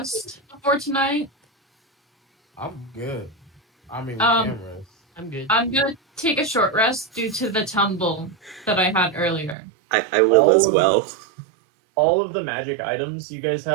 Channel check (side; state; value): left; drops out; at 9.6 s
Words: before tonight? I'm good. I mean, we Um, can rest. I'm good. I'm gonna take a short rest due to the tumble that I had earlier. I will as well. All of the magic items you guys